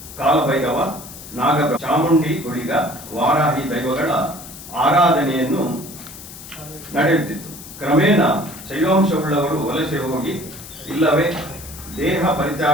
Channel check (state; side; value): noise; left; hiss, 15 dB below the sound